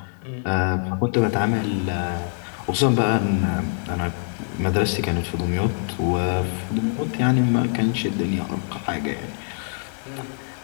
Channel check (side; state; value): right; silent; digital silence